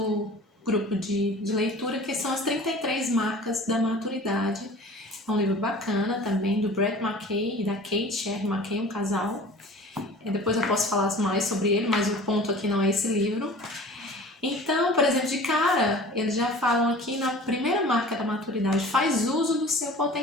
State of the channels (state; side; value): normal; both; correlation 0.43